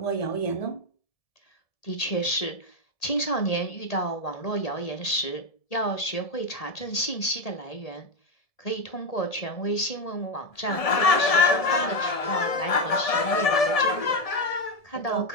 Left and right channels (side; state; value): right; late; 1.7 ms